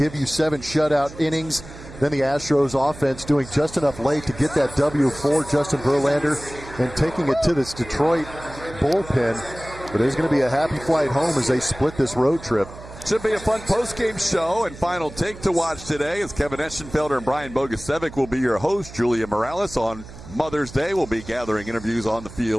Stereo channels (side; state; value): right; noise; hum, 16 dB below the sound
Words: you 7 shutout innings. Then the Astros offense doing just enough late to get that W for Justin Verlander and taking it to this Detroit bullpen. But it's going to be a happy flight home as they split this road trip. Should be a fun post-game show and final take to watch today as Kevin Eschenfelder and Brian Bogusevic will be your host. Julia Morales on Mother's Day will be gathering interviews on the